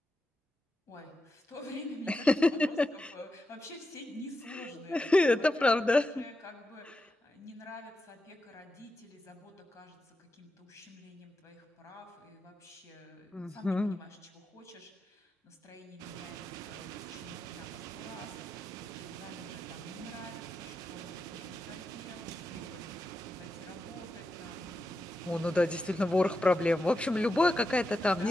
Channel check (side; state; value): both; normal; correlation 0.88